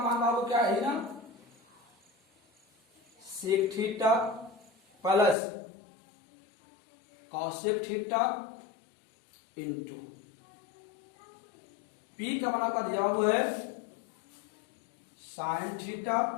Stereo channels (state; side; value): drops out; right; at 5.4 s